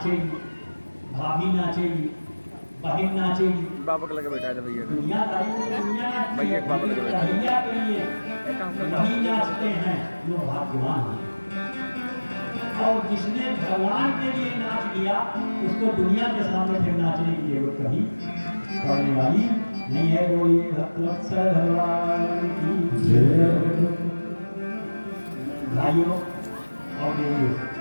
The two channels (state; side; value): inverted; both; correlation -1.00